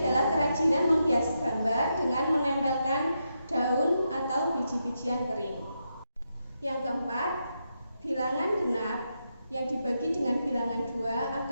kerajinan menghias gambar dengan menempelkan daun atau biji-bijian kering. Yang keempat, bilangan genap yang dibagi dengan bilangan 2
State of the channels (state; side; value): inverted; both; correlation -0.84